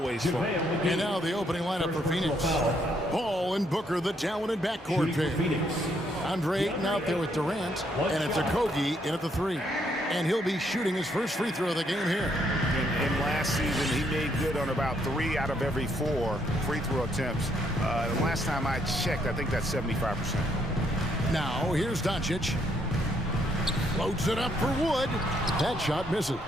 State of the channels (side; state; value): both; normal; correlation 0.72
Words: fun. And now the opening lineup for Phoenix. Paul and Booker, the talented backcourt pair. Andre Ayton out there with Durant, and it's Okogie in at the 3. And he'll be shooting his first free throw of the game here. And last season, he made good on about 3 out of every 4 free throw attempts. The last time I checked, I think that's 75%. Now, here's Doncic. Floats it up for Wood. That shot misses.